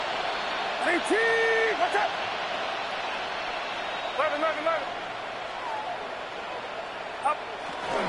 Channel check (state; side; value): identical; both; correlation 1.00